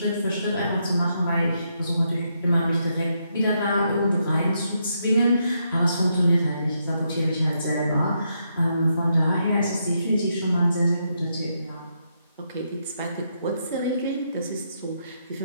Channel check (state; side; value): inverted; both; correlation -0.79